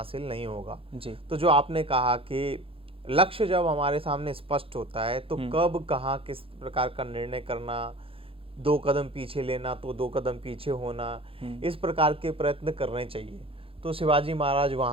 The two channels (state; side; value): late; left; 0.27 ms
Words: नहीं होगा जी। तो जो आपने कहा कि लक्ष्य जब हमारे सामने स्पष्ट होता है तो कब, कहाँ, किस प्रकार का निर्णय करना, 2 कदम पीछे लेना तो 2 कदम पीछे होना, इस प्रकार के प्रयत्न करने चाहिए। तो शिवाजी महाराज